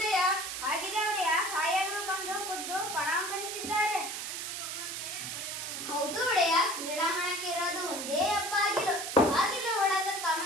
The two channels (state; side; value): noise; right; hiss, 5 dB below the sound